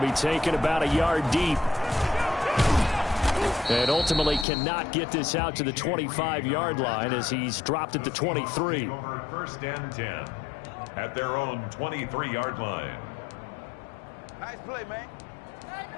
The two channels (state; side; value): drops out; right; at 4.5 s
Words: taken about a yard deep. And ultimately cannot get this out to the 25-yard line as he's dropped at the 23. Over 1st and 10 at their own 23-yard line. Nice play, man.